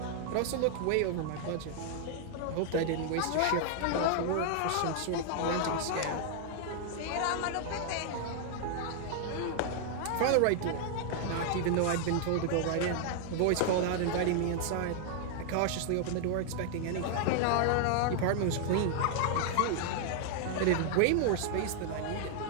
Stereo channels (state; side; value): different; both; correlation 0.00